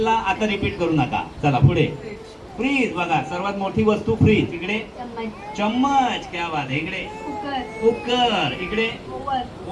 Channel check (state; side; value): identical; both; correlation 1.00